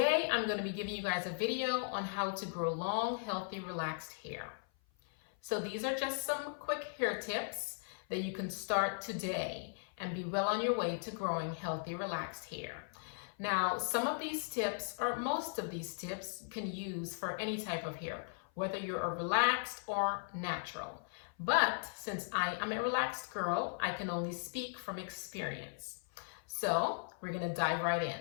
I'm going to be giving you guys a video on how to grow long, healthy, relaxed hair. So these are just some quick hair tips that you can start today and be well on your way to growing healthy, relaxed hair. Now, some of these tips, or most of these tips, can use for any type of hair, whether you're a relaxed or natural. But since I am a relaxed girl, I can only speak from experience. So we're gonna dive right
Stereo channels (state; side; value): silent; right; 53 dB below the other